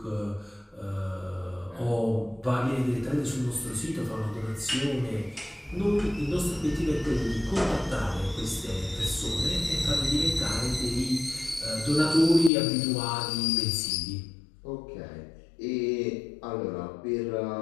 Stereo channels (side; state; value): right; drops out; at 12.5 s